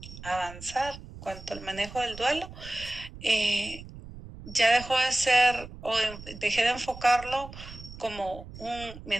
avanzar cuanto al manejo del duelo, ya dejó de ser, dejé de enfocarlo como un me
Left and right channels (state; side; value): noise; right; rumble, 14 dB below the sound